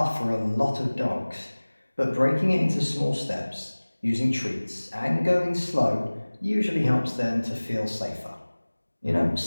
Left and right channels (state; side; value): inverted; both; correlation -1.00